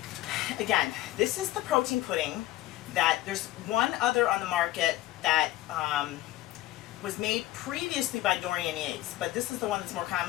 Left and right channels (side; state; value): right; quieter; 15.8 dB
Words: Again, this is the protein pudding that there's one other on the market that was made previously by Dorian Yates, but this is the one that's more